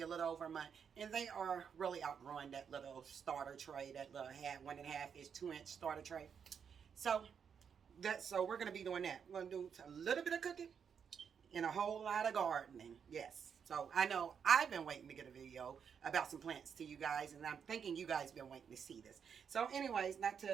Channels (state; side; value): quieter; left; 7.1 dB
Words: a little over a month, and they are really outgrowing that little starter tray, that little 1.5-inch, 2-inch starter tray. So we're gonna be doing that. We're gonna do a little bit of cooking and a whole lot of gardening. Yes. So I know I've been waiting to get a video about some plants to you guys, and I'm thinking you guys been waiting to see this. So anyways, not